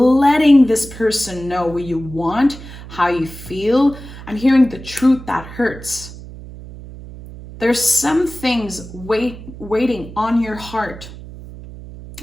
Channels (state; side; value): noise; right; hum, 15 dB below the sound